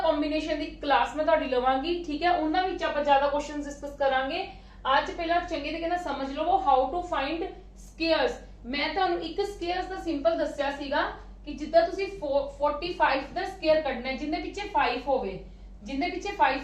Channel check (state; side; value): identical; both; correlation 1.00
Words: कॉम्बिनेशन दी क्लास मैं तुहाडी लवांगी, ठीक है। उन्हां विच आपां ज्यादा क्वेश्चंस डिस्कस करांगे। आज पहला चंगे तरीके नाल समझ लवो हाउ टू फाइंड स्क्वायर्स। मैं तुहानू एक स्क्वायर्स दा सिंपल दस्सिया सीगा कि जिद्दां तुसीं 45 दा स्क्वायर कढना है, जिंदे पिछे 5 होवे, जिंदे पिछे 5